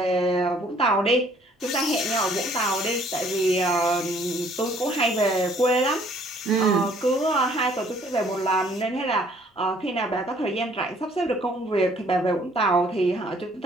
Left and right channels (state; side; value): normal; both; correlation 0.60